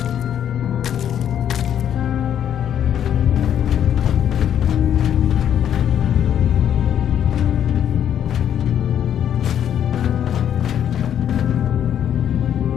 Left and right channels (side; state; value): right; quieter; 9.6 dB